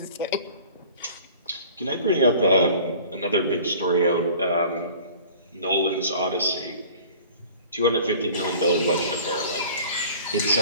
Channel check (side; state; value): both; inverted; correlation -0.46